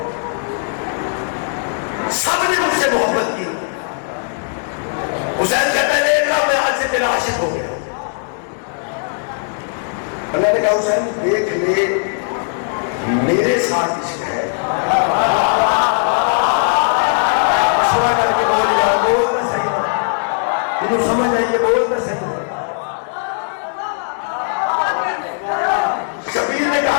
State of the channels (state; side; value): silent; right; 67 dB below the other